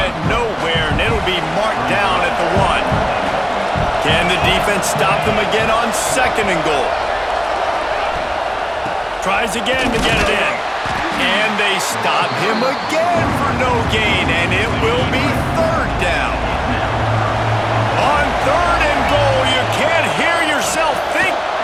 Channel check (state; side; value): identical; both; correlation 1.00